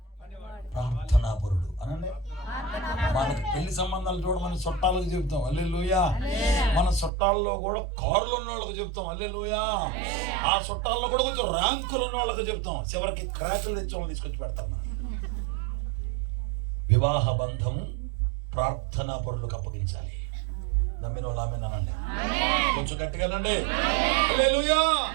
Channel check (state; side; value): drops out; left; at 7.1 s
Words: ప్రార్థనాపరుడు అనండి. మనకి పెళ్లి సంబంధాలు చూడ మన చుట్టాలకు చెప్తాం హల్లెలూయా. మన చుట్టాల్లో కూడా కారులు ఉన్న వాళ్ళకి చెప్తాం హల్లెలూయా. ఆ చుట్టాల్లో కూడా కొంచెం ర్యాంకులు ఉన్న వాళ్ళకి చెప్తాం. చివరికి క్రాకులు తెచ్చామని తీసుకొచ్చి పెడతాం మనం. వివాహ బంధం ప్రార్థనా పరులకు అప్పగించాలి. నమ్మిన వాళ్ళు ఆమె అనండి, కొంచెం గట్టిగానండి హల్లెలూయా.